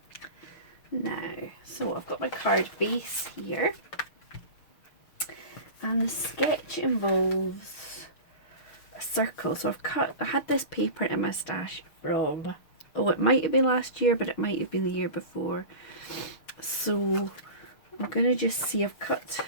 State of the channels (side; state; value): right; late; 6.6 ms